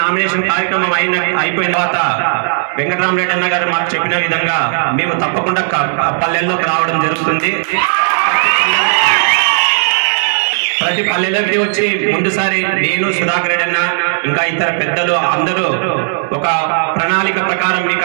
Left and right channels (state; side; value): silent; left; 67 dB below the other